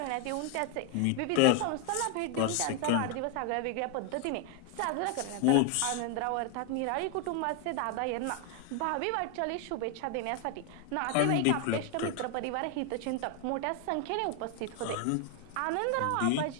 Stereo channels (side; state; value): both; different; correlation 0.01